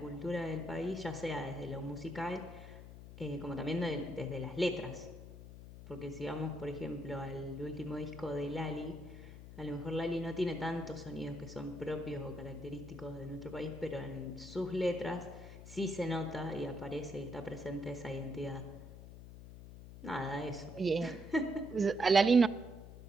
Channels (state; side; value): noise; left; hum, 13 dB below the sound